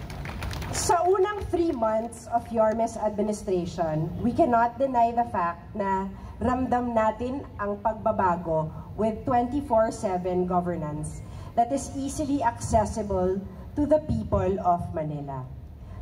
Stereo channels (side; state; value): both; identical; correlation 1.00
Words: Sa unang 3 months of Yorme's administration, we cannot deny the fact na ramdam natin ang pagbabago with 24/7 governance that is easily accessible to the people of Manila.